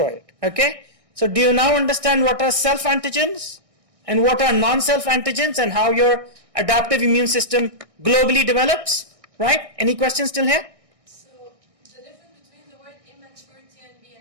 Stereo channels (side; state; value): left; late; 1.6 ms